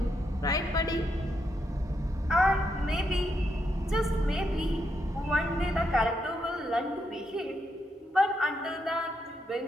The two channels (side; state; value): both; normal; correlation 0.81